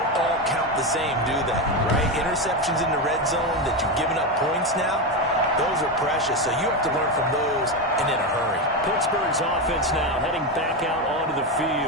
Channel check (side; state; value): both; normal; correlation 0.13